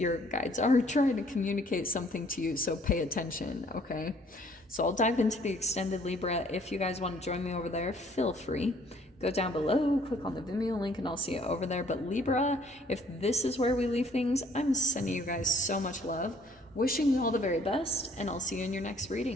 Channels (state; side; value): normal; both; correlation 0.60